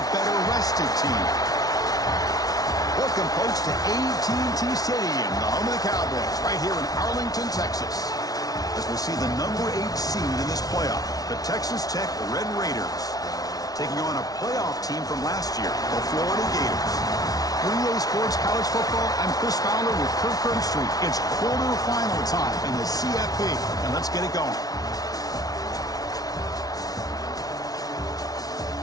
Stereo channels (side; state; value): right; late; 0.18 ms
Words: better-rested team? Welcome, folks, to AT&T Stadium, the home of the Cowboys, right here in Arlington, Texas, as we see the number 8 seed in this playoff, the Texas Tech Red Raiders, taking on a playoff team from last year, the Florida Gators. Relay Sports College Football, I'm Chris Fowler with Kirk Herbstreit. It's quarterfinal time in the CFP, and let's get it going.